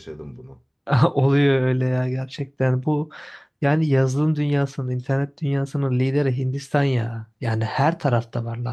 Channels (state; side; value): identical; both; correlation 1.00